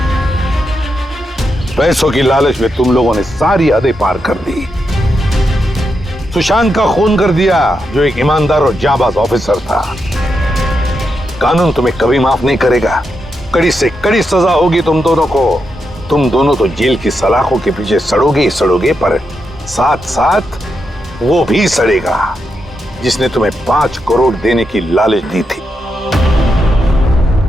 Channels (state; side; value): normal; both; correlation 0.85